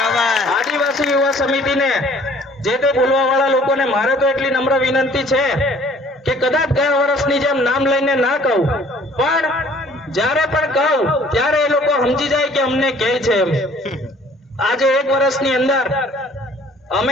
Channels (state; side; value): normal; both; correlation 0.55